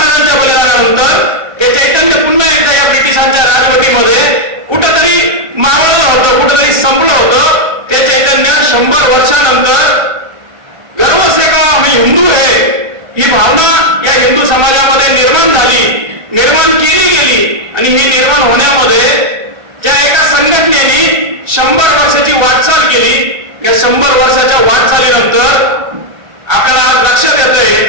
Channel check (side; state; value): left; late; 1.5 ms